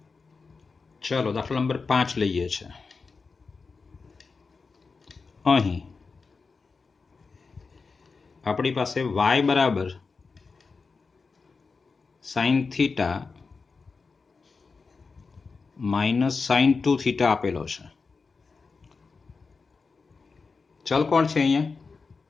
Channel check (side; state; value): right; quieter; 4.6 dB